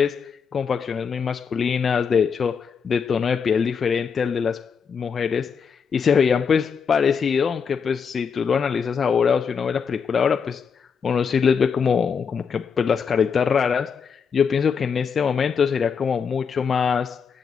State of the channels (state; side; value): quieter; right; 6.3 dB